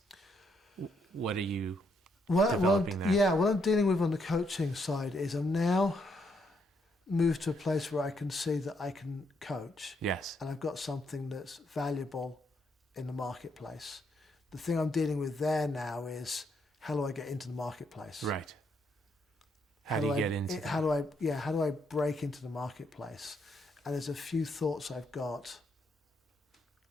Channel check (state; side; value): normal; both; correlation 0.75